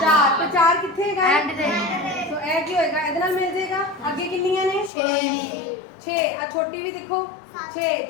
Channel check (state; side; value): drops out; right; at 4.9 s